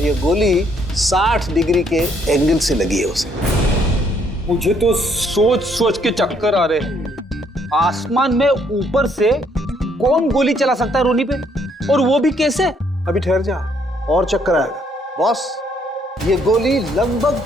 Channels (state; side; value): normal; both; correlation 0.69